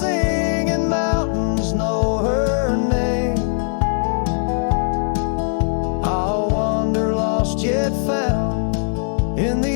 and mountains know her name. I'll wander lost yet found in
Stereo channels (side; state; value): right; silent; 60 dB below the other